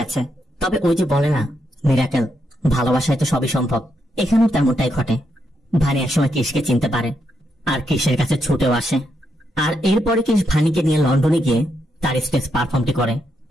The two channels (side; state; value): both; normal; correlation 0.81